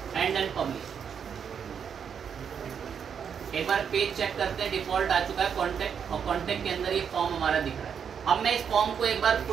एंड देन पब्लिश। एक बार पेज चेक करते हैं, डिफॉल्ट आ चुका है कॉन्टेक्ट, और कॉन्टेक्ट के अंदर ये फॉर्म हमारा दिख रहा है। अब मैं इस फॉर्म को एक बार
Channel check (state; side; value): quieter; left; 7.4 dB